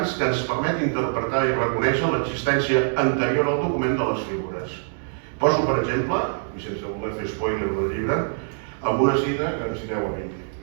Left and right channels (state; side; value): silent; left; digital silence